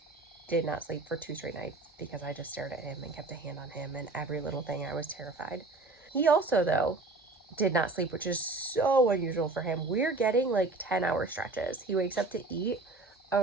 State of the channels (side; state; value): left; quieter; 3.2 dB